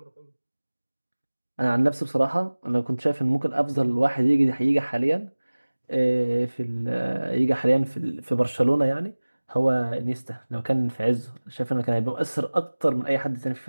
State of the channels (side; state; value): both; inverted; correlation -1.00